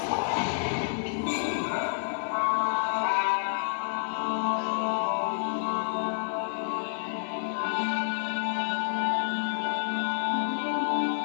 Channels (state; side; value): silent; right; 59 dB below the other